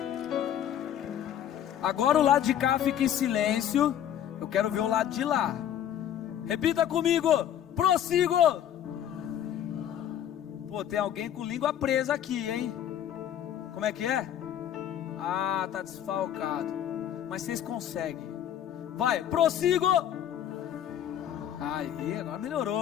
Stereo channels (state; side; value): quieter; right; 10.4 dB